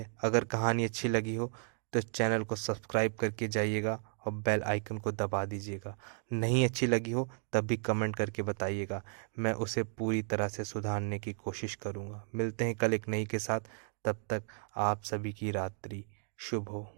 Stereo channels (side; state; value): left; silent; 55 dB below the other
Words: अगर कहानी अच्छी लगी हो तो चैनल को सब्सक्राइब करके जाइएगा और बेल आइकन को दबा दीजिएगा। नहीं अच्छी लगी हो तब भी कमेंट करके बताइएगा, मैं उसे पूरी तरह से सुधारने की कोशिश करूँगा। मिलते हैं कल एक नई के साथ, तब तक आप सभी की रात्रि शुभ हो।